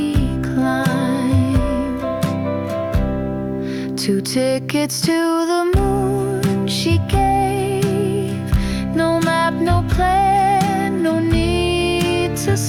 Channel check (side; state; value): both; identical; correlation 1.00